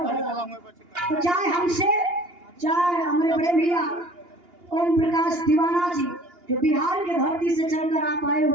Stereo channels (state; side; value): late; left; 2.8 ms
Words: भला। तो चाहे हमसे, चाहे हमारे बड़े भैया ओम प्रकाश दीवाना जी जो बिहार के धरती से चलकर आप आए